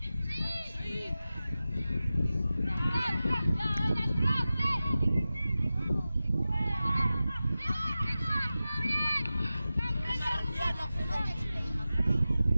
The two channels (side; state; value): both; inverted; correlation -0.95